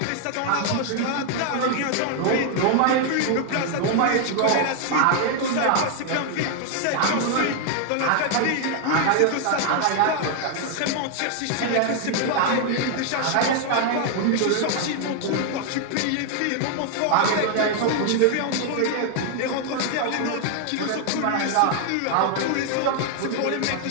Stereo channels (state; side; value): different; both; correlation 0.00